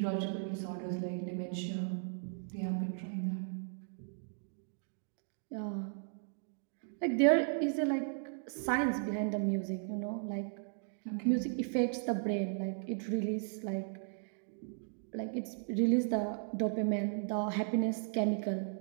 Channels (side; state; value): left; silent; digital silence